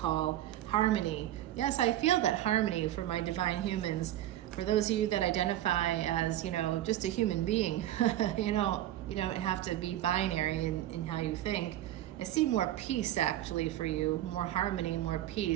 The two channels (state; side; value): quieter; left; 13.3 dB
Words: Harmony. Yes, I feel that harmony for my divine humans. For those of you that identify as, just a human being, you don't have to be binary in how you think. I see more peace actually for you, more harmony, more